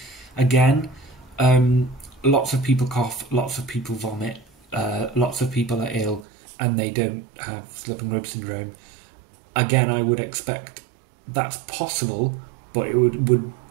Again, lots of people cough, lots of people vomit, lots of people are ill and they don't have slipping rib syndrome. Again, I would expect that's possible, but it would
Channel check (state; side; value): drops out; left; at 6.2 s